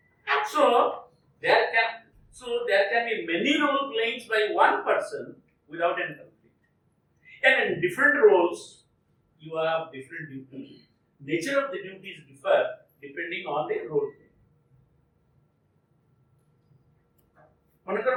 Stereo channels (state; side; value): identical; both; correlation 1.00